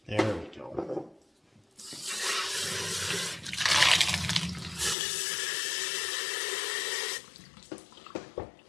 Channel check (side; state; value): right; drops out; at 5.0 s